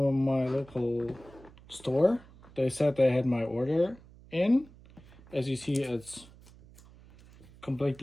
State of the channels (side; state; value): right; noise; hum, 23 dB below the sound